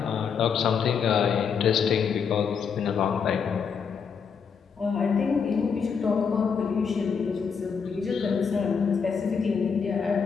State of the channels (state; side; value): quieter; right; 6.3 dB